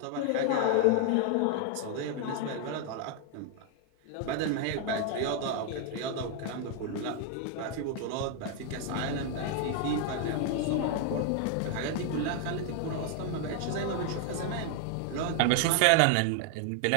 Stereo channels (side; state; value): both; different; correlation 0.00